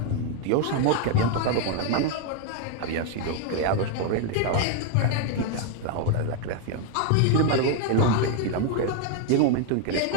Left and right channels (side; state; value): both; different; correlation 0.01